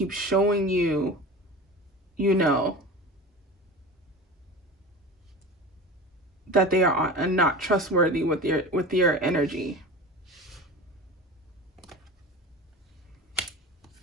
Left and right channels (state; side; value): normal; both; correlation 0.32